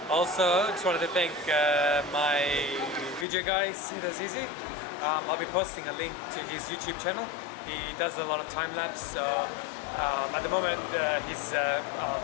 Also, just wanted to thank my video guy, Az-Eazy. I'll be posting a link to his YouTube channel. He does a lot of time-lapse, so at the moment he's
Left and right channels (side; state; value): right; drops out; at 3.2 s